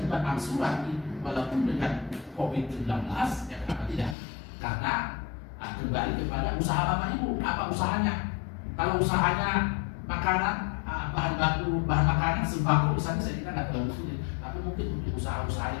angsuran itu walaupun dengan COVID-19, ya kenapa tidak? Karena kembali kepada usaha Bapak Ibu, apa usahanya? Kalau usahanya makanan, bahan baku, bahan makanan, sembako, misalnya, saya kira nggak terlalu sulit. Tapi mungkin untuk usaha-usaha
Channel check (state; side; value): drops out; right; at 4.2 s